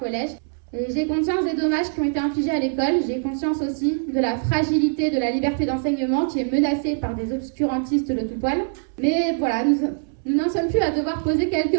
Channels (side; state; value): left; silent; 63 dB below the other